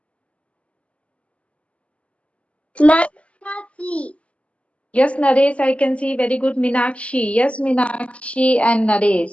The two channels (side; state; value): right; late; 0.062 ms